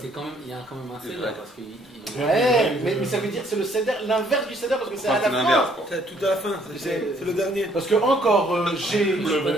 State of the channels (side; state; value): both; normal; correlation 0.64